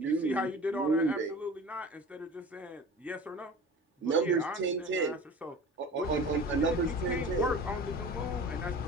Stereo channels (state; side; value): normal; both; correlation 0.38